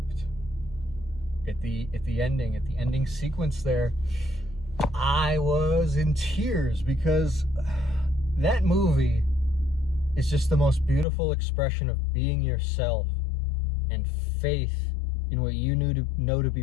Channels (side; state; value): right; drops out; at 11.1 s